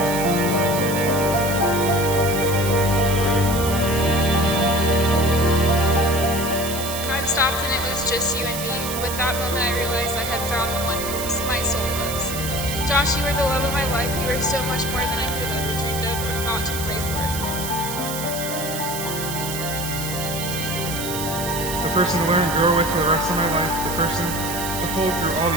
Time stopped and it was just you and me. With that moment, I realized I had found the one who my soul loves. Josh, you are the love of my life. You are so much more than I could have ever dreamed of or thought to pray for. The person to learn and grow with for the rest of my life, the person to hold through all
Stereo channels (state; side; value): noise; right; hiss, 6 dB below the sound